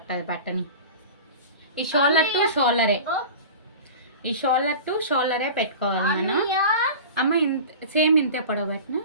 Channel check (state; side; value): inverted; both; correlation -0.35